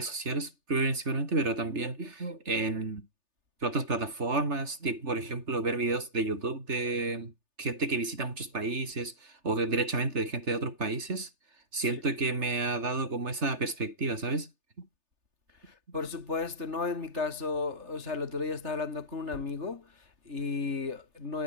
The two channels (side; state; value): left; late; 3.3 ms